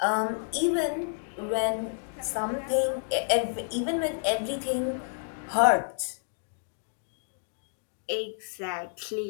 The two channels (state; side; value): silent; right; digital silence